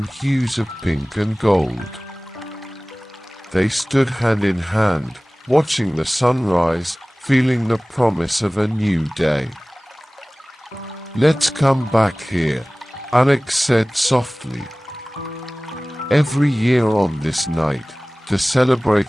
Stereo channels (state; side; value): normal; both; correlation 0.98